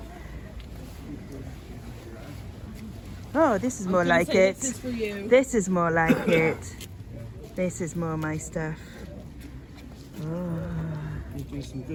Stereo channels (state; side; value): identical; both; correlation 1.00